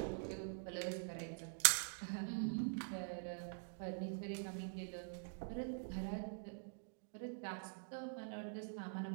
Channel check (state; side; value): silent; left; digital silence